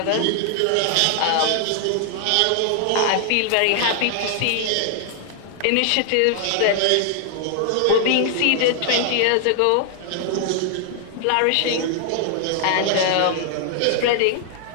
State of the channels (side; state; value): both; different; correlation 0.00